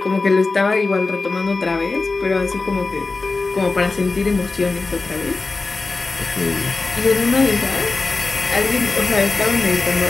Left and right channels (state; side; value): quieter; right; 3.7 dB